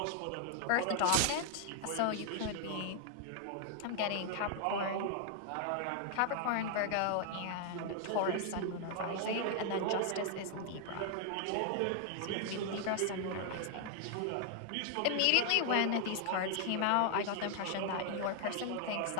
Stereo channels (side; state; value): both; different; correlation 0.00